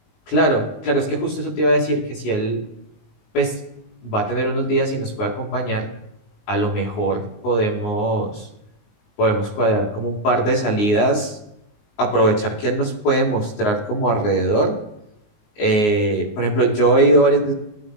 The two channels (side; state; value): right; late; 19 ms